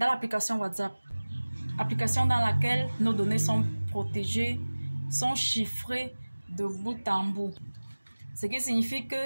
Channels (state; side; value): inverted; both; correlation -1.00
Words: l'application WhatsApp. Application dans laquelle nos données sont protégées, sont chiffrées de bout en bout. Ce qui signifie